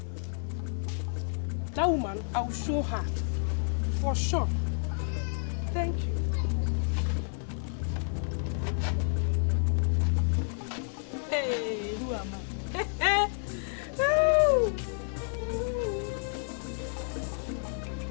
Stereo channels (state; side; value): silent; right; digital silence